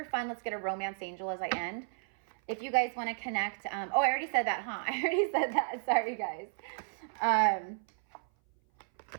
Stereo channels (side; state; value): left; silent; 56 dB below the other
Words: fun, let's get a romance angel as I end. If you guys want to connect, oh, I already said that, huh? I already said that. Sorry, guys.